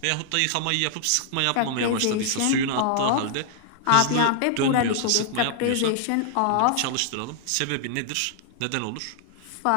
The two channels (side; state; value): both; different; correlation 0.00